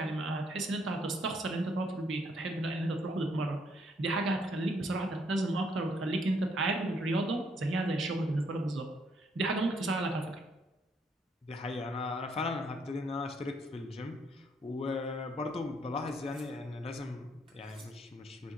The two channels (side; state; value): both; normal; correlation 0.70